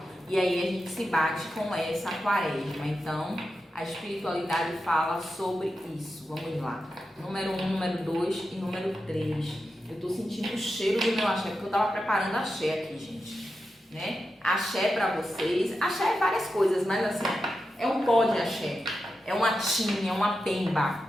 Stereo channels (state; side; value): normal; both; correlation 0.90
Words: e aí a gente se bate com essa quaresma. Então, a espiritualidade fala sobre isso. Vamos lá. Número 1, número 2 e número 3. Eu tô sentindo o cheiro do meu axé, porque eu tava preparando axé aqui, gente. Né? Axé pra vocês. Axé é várias coisas, mas assim, é um pó de axé. É uma tinha, uma pemba.